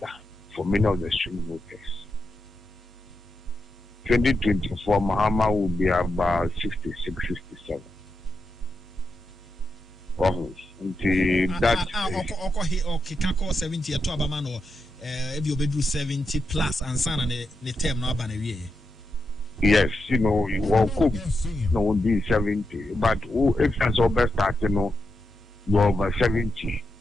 for many of the swing voters. 2024, Mahama will be about 66, 67. Until that. Okay, 70 to Abamano, if you bedroom 70 plus and son and the term no banner. Yes, you know, you will cook, no, be 70. But if that's all best start, you know, you're over 70,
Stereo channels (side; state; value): both; normal; correlation 0.86